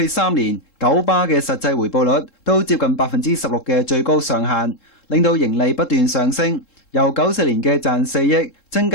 3年，九巴嘅實際回報率都接近16%嘅最高上限，令到盈利不斷上升，由94年嘅賺4億增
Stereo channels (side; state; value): right; late; 3.7 ms